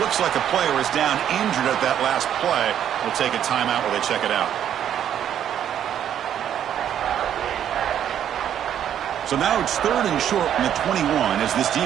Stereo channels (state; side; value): quieter; left; 9.9 dB